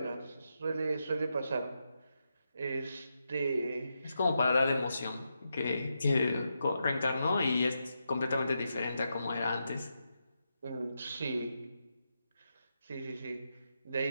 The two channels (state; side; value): inverted; both; correlation -0.85